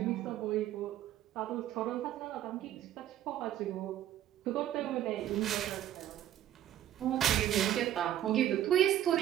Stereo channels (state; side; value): quieter; left; 11.9 dB